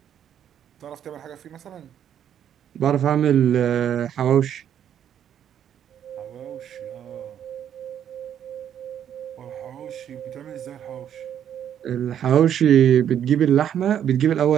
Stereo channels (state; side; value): quieter; left; 9.6 dB